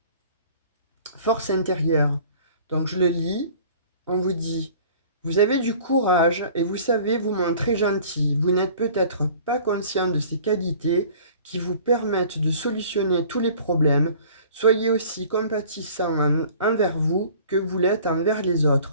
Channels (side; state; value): both; inverted; correlation -0.48